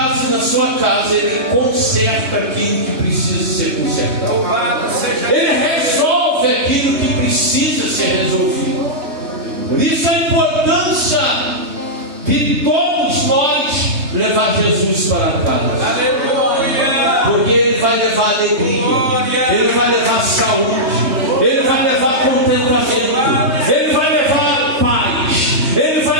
e na sua casa, ele conserta aquilo que precisa ser consertado. Ele resolve aquilo que precisa ser resolvido. Por isso a importância de todos nós levar Jesus para casa. Aleluia. Porque ele vai levar alegria, ele vai levar saúde, ele vai levar contentamento, ele vai levar paz, ele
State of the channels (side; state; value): left; late; 3.2 ms